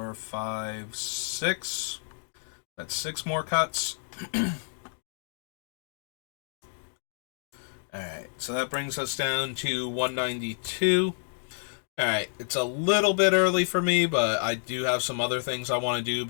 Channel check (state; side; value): silent; right; digital silence